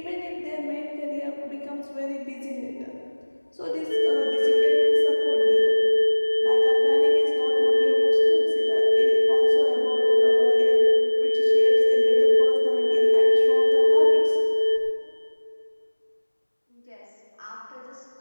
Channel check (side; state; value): both; inverted; correlation -1.00